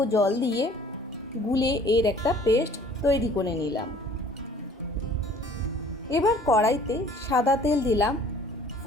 জল দিয়ে গুলে এর একটা পেস্ট তৈরি করে নিলাম। এবার কড়াইতে সাদা তেল দিলাম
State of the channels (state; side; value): normal; both; correlation 0.53